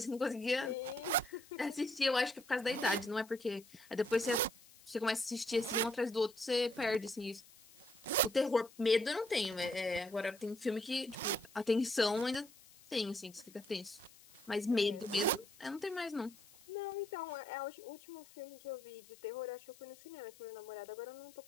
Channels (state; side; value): noise; left; hiss, 23 dB below the sound